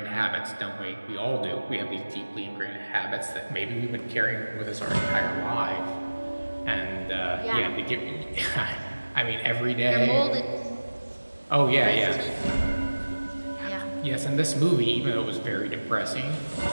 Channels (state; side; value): inverted; both; correlation -1.00